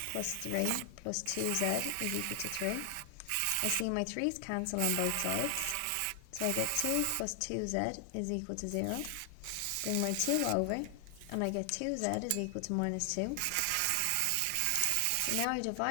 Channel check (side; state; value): both; different; correlation 0.00